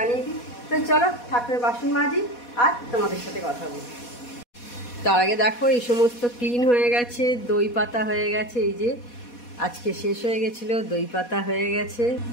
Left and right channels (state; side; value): late; right; 4.2 ms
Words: দিই। তো চলো ঠাকুরের বাসন মাজি আর তোমাদের সাথে কথা বলি। তার আগে দেখো এই সমস্ত ক্লিন হয়ে গেছে, দই পাতা হয়ে গেছে। এই যে আজকে শেষ হয়ে গেছিল, দই পাতা হয়ে গেছে।